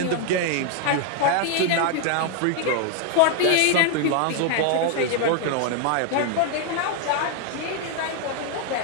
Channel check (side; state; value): both; different; correlation 0.00